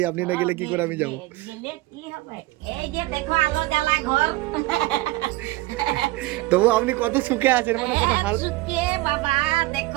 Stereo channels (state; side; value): quieter; left; 19.5 dB